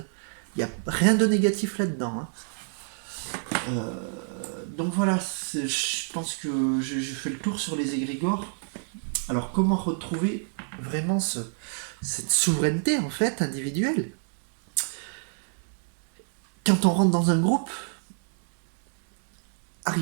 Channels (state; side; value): silent; left; digital silence